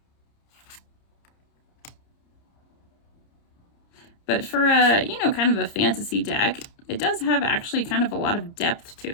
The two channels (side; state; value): right; late; 30 ms